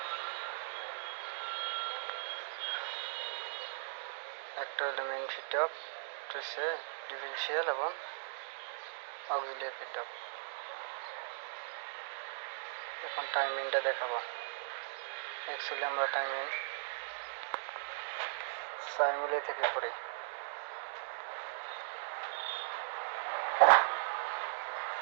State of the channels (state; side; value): silent; left; digital silence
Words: একটা হলো মেন ফিট অফ, হচ্ছে ডিফিশিয়াল এবং অক্সিলিয়ারি ফিট অফ। এখন টাইমিংটা দেখাবো। অ্যাকচুয়ালি আমরা টাইমিং 4 মিলি থেকে করি।